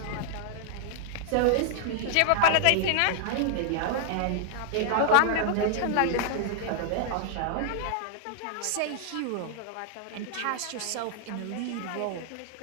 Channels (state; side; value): different; both; correlation 0.00